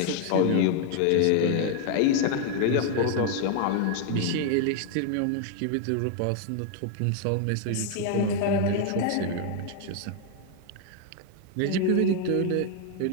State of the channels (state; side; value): different; both; correlation 0.00